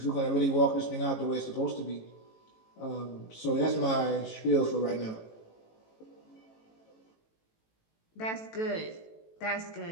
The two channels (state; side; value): late; right; 18 ms